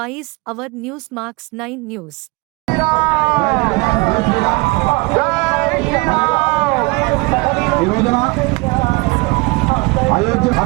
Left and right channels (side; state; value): left; quieter; 26.0 dB